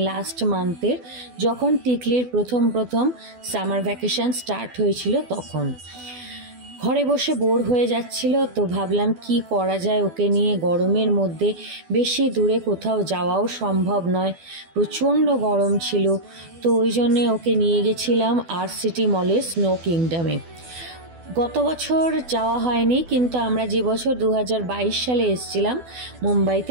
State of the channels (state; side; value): late; left; 12 ms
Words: লাস্ট মান্থের, যখন টিকলির প্রথম সামার ভ্যাকেশন স্টার্ট হয়েছিল তখন। ঘরে বসে বোর হয়ে যাচ্ছিল, তো ভাবলাম কি করা যায় ওকে নিয়ে। গরমের মধ্যে বেশি দূরে কোথাও যাওয়াও সম্ভব নয়, প্রচণ্ড গরম ছিল। তো ওই জন্যে ওকে নিয়ে গেছিলাম আরসিটি মলে স্নো কিংডমে। গত বছর যাওয়া হয়নি, কিন্তু আমরা যে বছর 2022 সালে এসেছিলাম